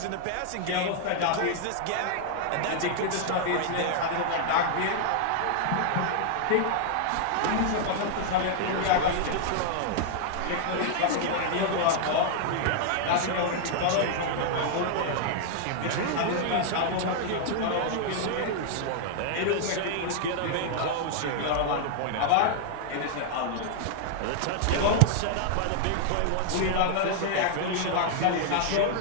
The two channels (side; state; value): both; different; correlation -0.01